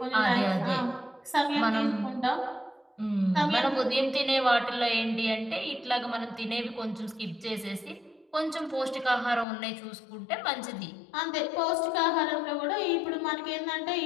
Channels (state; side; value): drops out; right; at 9.5 s